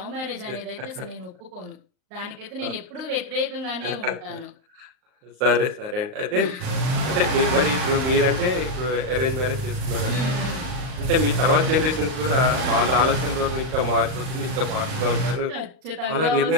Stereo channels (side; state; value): left; late; 39 ms